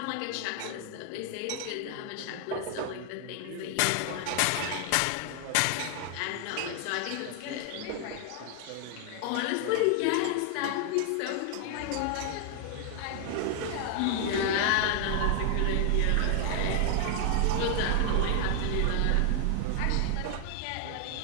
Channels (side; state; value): both; different; correlation 0.00